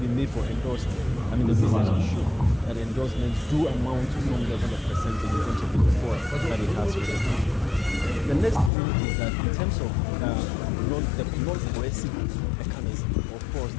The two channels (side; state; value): right; drops out; at 8.7 s